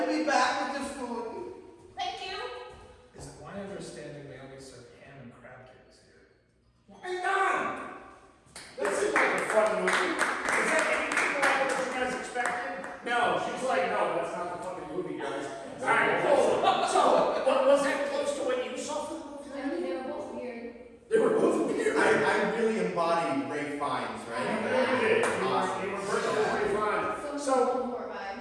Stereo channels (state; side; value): identical; both; correlation 1.00